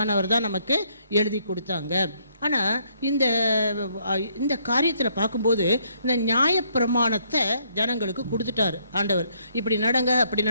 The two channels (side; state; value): both; inverted; correlation -0.69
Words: தான் நமக்கு எழுதி கொடுத்தாங்க. ஆனால் இந்த காரியத்தில் பார்க்கும்போது இந்த நியாயப்பிரமாணத்தை ஜனங்களுக்கு கொடுத்துட்டார் ஆண்டவர். இப்படி நடங்க அப்படி